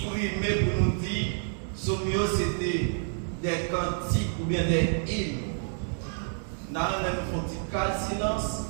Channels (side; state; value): left; silent; 59 dB below the other